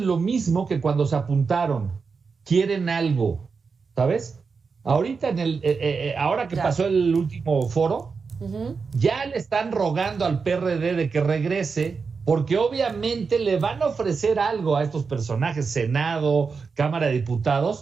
lo mismo que cuando se apuntaron. Quieren algo, ¿sabes? Ahorita, ahora que pasó el último foro, ya le están rogando al PRD de que regrese, porque obviamente le van a ofrecer algo a estos personajes, Senado, Cámara de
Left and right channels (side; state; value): left; quieter; 5.1 dB